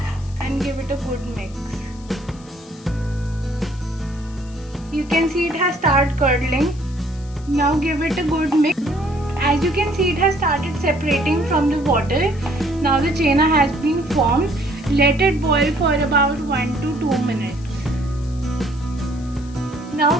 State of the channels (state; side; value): noise; left; hiss, 24 dB below the sound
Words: and give it a good mix. You can see it has started curdling. Now give it a good mix. As you can see, it has started separating from the water. Now the chena has been formed. Let it boil for about 1 to 2 minutes.